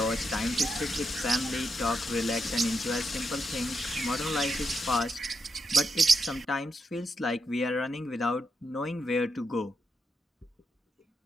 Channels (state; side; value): normal; both; correlation 0.83